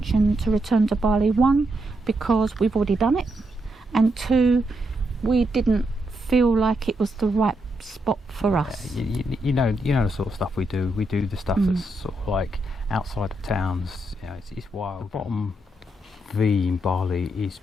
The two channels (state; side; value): normal; both; correlation 0.81